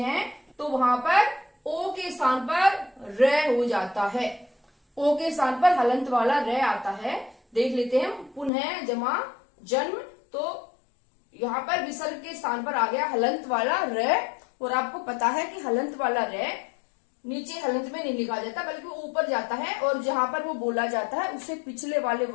तो वहां पर ओ के स्थान पर र हो जाता है, ओ के स्थान पर हलंत वाला र आता है। देख लेते हैं, पुनः जमा जन्म, तो यहाँ पर विसर्ग के स्थान पर आ गया हलंत वाला र, और आपको पता है कि हलंत वाला र नीचे हलंत में नहीं लिखा जाता बल्कि ऊपर जाता है, और जहां पर वो बोला जाता है उससे पिछले वाले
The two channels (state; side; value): drops out; right; at 8.5 s